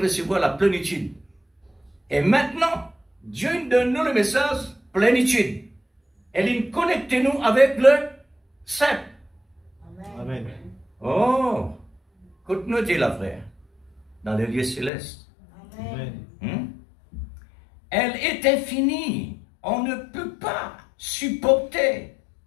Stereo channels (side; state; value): right; drops out; at 14.9 s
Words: recevoir la plénitude. Et maintenant, Dieu nous donne nous le message plénitude. Et il connecte nous avec le Saint. Amen. Oh, écoute-nous, la frère, dans les lieux célestes. Amen. Elle est infinie. On ne peut pas supporter